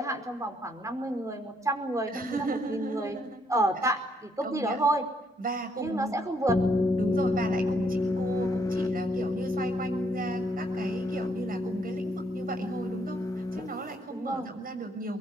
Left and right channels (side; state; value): both; normal; correlation 0.72